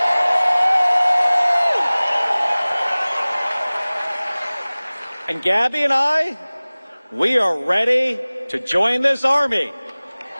And Gabby and I, we are ready to join this Army.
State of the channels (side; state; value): both; inverted; correlation -0.99